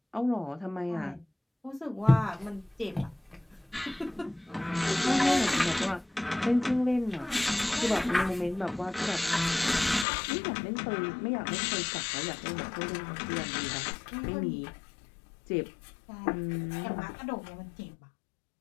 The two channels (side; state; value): right; drops out; at 10.1 s